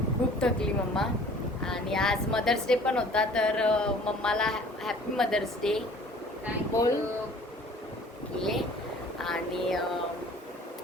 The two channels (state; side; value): normal; both; correlation 0.50